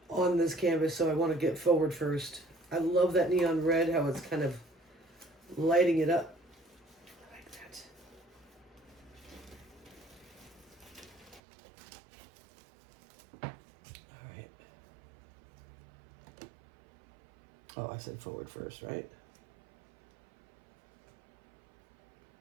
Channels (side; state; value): left; drops out; at 11.4 s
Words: on this canvas, so I want to get forward first. I love that neon red, how it's kind of lighting it up. I like that. All right. Oh, I said forward first, right?